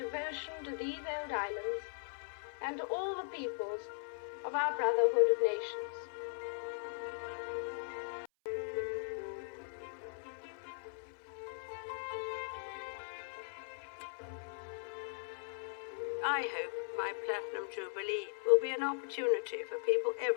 to these old islands and to all the peoples of our brotherhood of nations. I hope my Platinum Jubilee will be an opportunity for people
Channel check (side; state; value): right; silent; 52 dB below the other